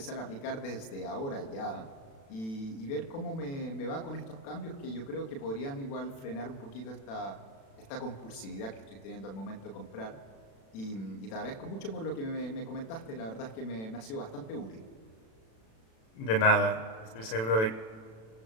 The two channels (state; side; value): late; right; 36 ms